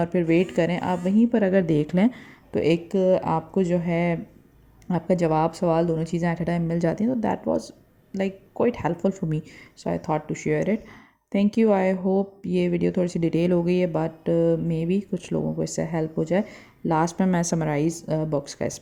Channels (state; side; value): identical; both; correlation 1.00